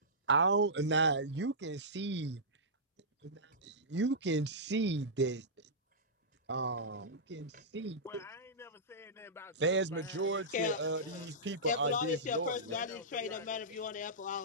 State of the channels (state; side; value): normal; both; correlation -0.16